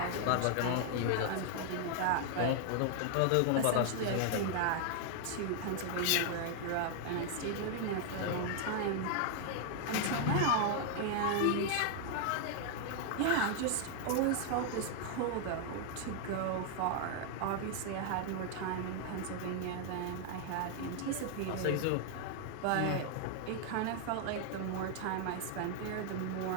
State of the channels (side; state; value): both; different; correlation 0.00